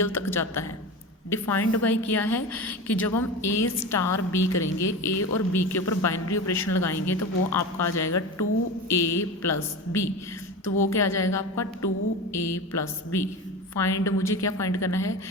तक जाता है, डिफाइंड बाय किया है कि जब हम ए स्टार बी करेंगे, ए और बी के ऊपर बाइनरी ऑपरेशन लगाएंगे तो वो आपका आ जाएगा 2a प्लस बी। तो वो क्या आ जाएगा आपका 2a प्लस बी। फाइंड, मुझे क्या फाइंड करना है,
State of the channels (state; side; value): normal; both; correlation 0.28